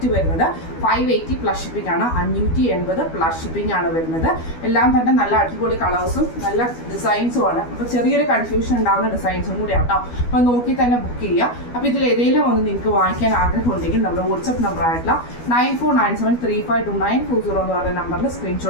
വരുന്നത് 580 പ്ലസ് ഷിപ്പിംഗ് ആണ്, 580 പ്ലസ് ഷിപ്പിംഗ് ആണ് വരുന്നത്. എല്ലാം തന്നെ നല്ല അടിപൊളി കളേഴ്സും നല്ല ഡിസൈൻസും ആണ്. അപ്പോൾ ചെറിയൊരു കൺഫ്യൂഷൻ ഉണ്ടാകുന്ന ഡിസൈൻസും കൂടി ആട്ടോ. അപ്പോൾ നോക്കി തന്നെ ബുക്ക് ചെയ്യുക. അപ്പോൾ ഇതിൽ ഏതെങ്കിലും ഒന്ന് നിങ്ങൾക്ക് വാങ്ങിക്കാൻ ആഗ്രഹം ഉണ്ടെങ്കിൽ നമ്മുടെ വാട്സപ്പ് നമ്പർ ആയിട്ടുള്ള 9497352940 എന്ന് പറയുന്ന നമ്പറിൽ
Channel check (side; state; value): right; late; 12 ms